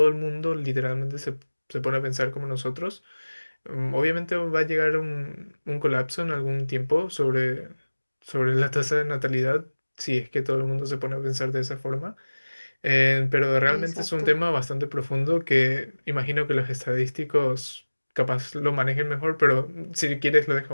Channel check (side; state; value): both; inverted; correlation -1.00